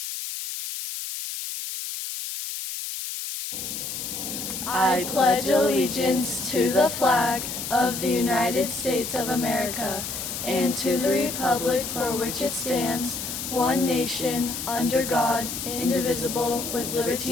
I pledge allegiance to the flag of the United States of America and to the republic for which it stands, one nation, under God, indivisible, with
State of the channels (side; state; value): left; noise; hiss, 5 dB below the sound